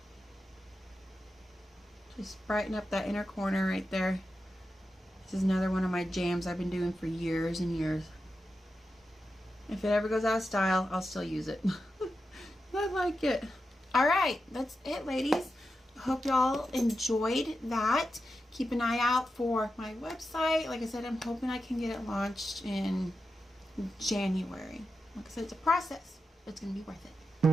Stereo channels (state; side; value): normal; both; correlation 0.89